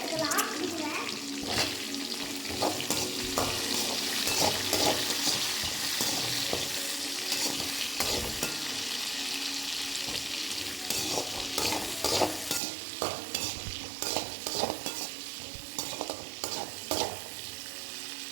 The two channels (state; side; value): drops out; left; at 12.6 s